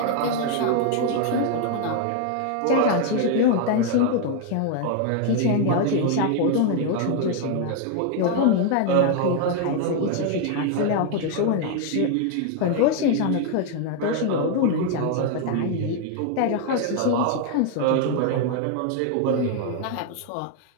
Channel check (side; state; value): both; different; correlation 0.00